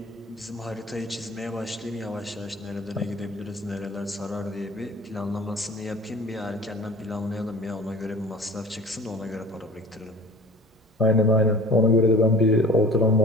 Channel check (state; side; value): normal; both; correlation 0.43